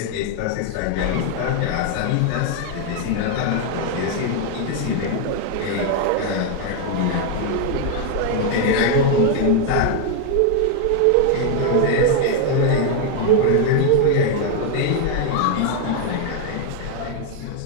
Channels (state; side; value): different; both; correlation 0.01